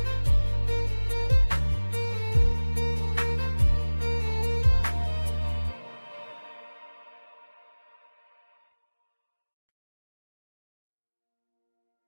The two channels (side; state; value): both; inverted; correlation -1.00